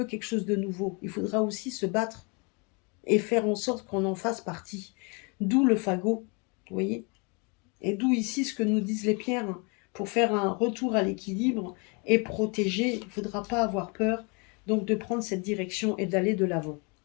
quelque chose de nouveau, il faudra aussi se battre et faire en sorte qu'on en fasse partie. D'où le fagot, vous voyez. Et d'où ici ce que nous disent les pierres. Pour faire un retour à l'équilibre et protéger, il ne faudra pas avoir peur donc de prendre cette direction et d'aller de l'avant.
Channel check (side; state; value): right; quieter; 32.4 dB